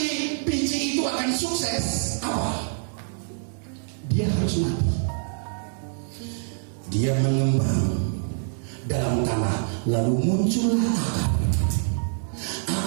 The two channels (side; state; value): left; silent; 61 dB below the other